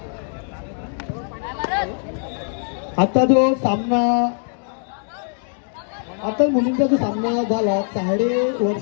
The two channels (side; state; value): right; silent; 58 dB below the other